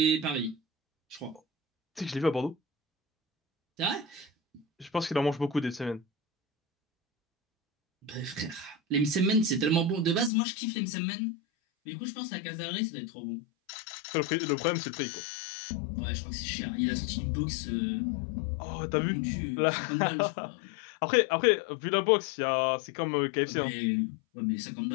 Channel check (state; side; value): drops out; right; at 10.3 s